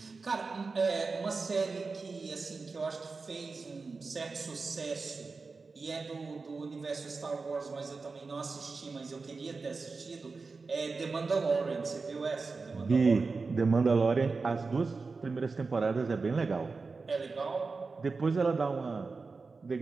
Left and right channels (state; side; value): quieter; left; 4.2 dB